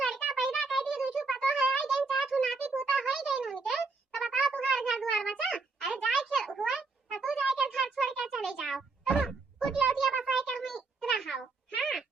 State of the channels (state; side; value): quieter; left; 4.0 dB